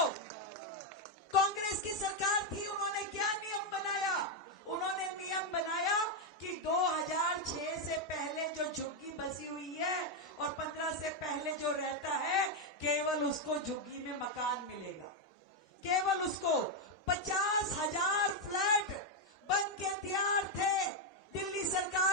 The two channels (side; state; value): both; normal; correlation 0.02